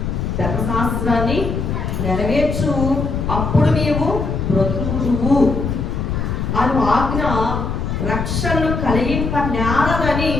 ధర్మశాస్త్రాన్ని నెరవేర్చు, అప్పుడు నీవు బ్రతుకుదువు అను ఆజ్ఞ రక్షణను కలిగింప నేరదని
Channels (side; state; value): left; noise; rumble, 2 dB below the sound